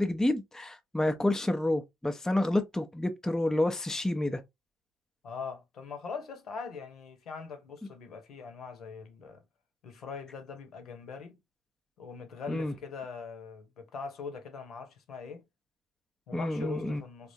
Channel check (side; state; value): both; normal; correlation 0.92